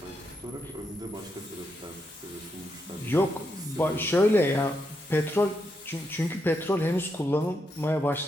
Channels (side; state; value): both; normal; correlation 0.82